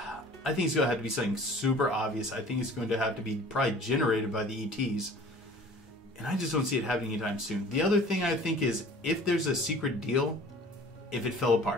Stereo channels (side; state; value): both; normal; correlation 0.47